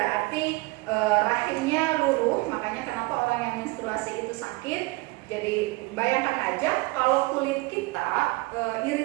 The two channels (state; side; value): quieter; left; 23.7 dB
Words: rahimnya luruh. Makanya kenapa orang yang menstruasi itu sakit. Jadi bayangkan aja kalau kulit kita